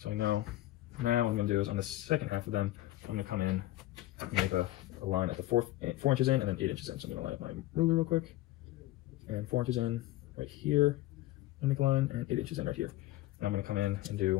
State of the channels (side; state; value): right; quieter; 16.1 dB